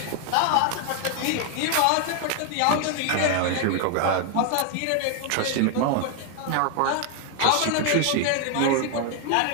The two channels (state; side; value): different; both; correlation 0.01